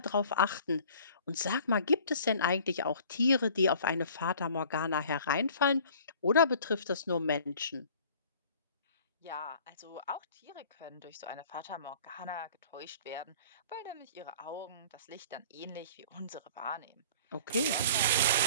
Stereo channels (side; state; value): both; inverted; correlation -0.49